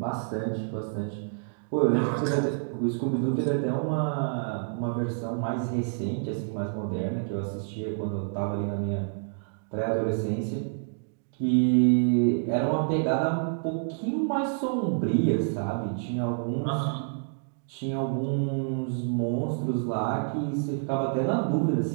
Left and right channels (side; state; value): left; silent; digital silence